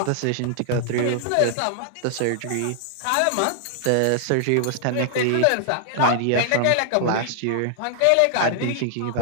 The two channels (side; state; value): both; different; correlation -0.01